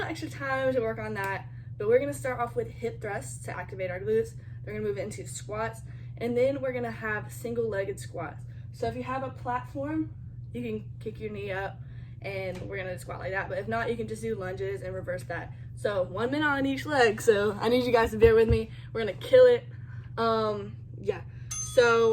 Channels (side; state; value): both; identical; correlation 1.00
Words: extra time to work on that. But we're gonna start off with hip thrusts to activate our glutes. We're gonna move into squats, and then we're gonna have single-legged squats. So if you have a platform, you can kick your knee up, and we're gonna squat like that. But if not, you can just do lunges and reverse that. So 1 minute on each leg. So I need you guys to bear with me. We're gonna kill it. Yeah.